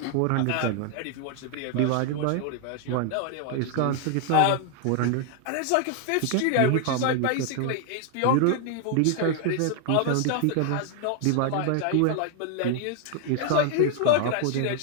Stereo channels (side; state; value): both; different; correlation 0.00